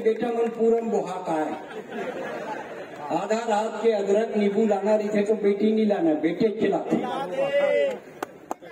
मन पूरम बुहाता है। आधा रात के अदरक नींबू लाना रही थे तो बेटी नहीं लाना, बेटे खिलाते।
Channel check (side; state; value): both; identical; correlation 1.00